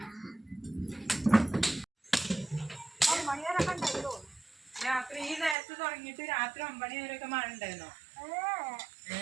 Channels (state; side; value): drops out; left; at 5.6 s